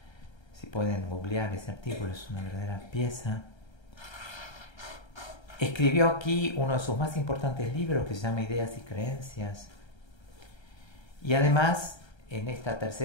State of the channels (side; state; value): right; late; 1.3 ms